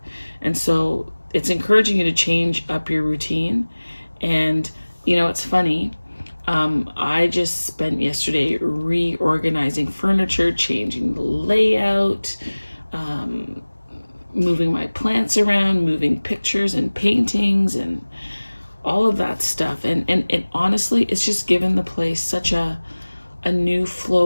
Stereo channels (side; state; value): both; inverted; correlation -1.00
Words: And so it's encouraging you to change up your routine. And, you know, it's funny. I just spent yesterday reorganizing furniture, changing the layout, moving my plants around, moving pictures and paintings and all of that stuff. And honestly, it's just given the place such a new